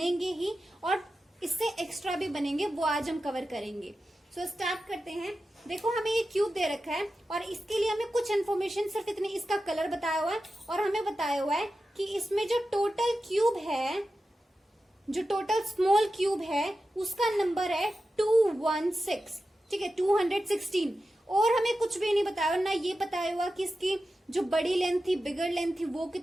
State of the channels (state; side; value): normal; both; correlation 0.92